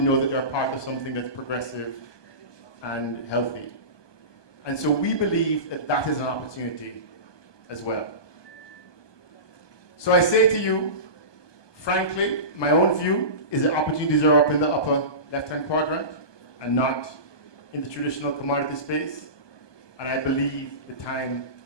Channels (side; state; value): right; late; 1.2 ms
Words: know that they're part of something that's progressive and healthy. And so we believe that that is an opportunity as well. So I say to you, frankly, my own view is that opportunities are up in the upper left-hand quadrant and not in the traditional commodity space. And I believe the time